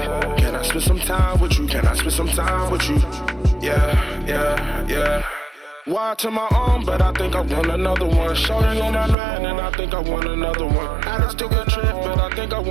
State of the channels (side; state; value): left; drops out; at 9.2 s